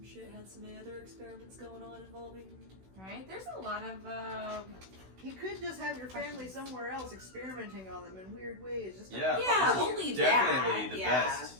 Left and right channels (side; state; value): left; late; 16 ms